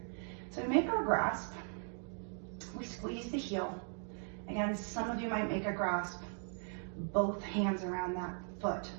So we make our grasp. We squeeze the heel. Again, some of you might make a grasp, both hands around that foot.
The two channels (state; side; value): silent; left; 52 dB below the other